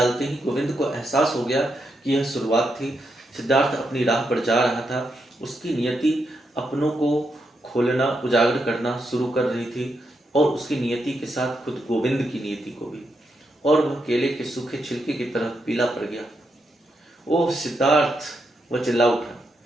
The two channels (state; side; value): normal; both; correlation 0.82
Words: ही गोविंद को एहसास हो गया कि यह शुरुआत थी। सिद्धार्थ अपनी राह पर जा रहा था। उसकी नियति अपनों को खोलना, उजागर करना शुरू कर रही थी, और उसकी नियति के साथ खुद गोविंद की नियति को भी, और वह केले के सूखे छिलके की तरह पीला पड़ गया। ओह सिद्धार्थ, वह चिल्ला उठा,